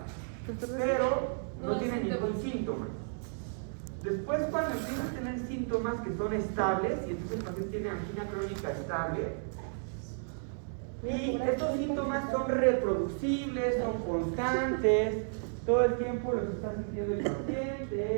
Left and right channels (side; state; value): left; silent; 56 dB below the other